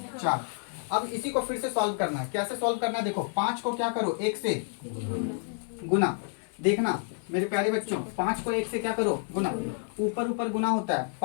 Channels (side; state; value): right; silent; 56 dB below the other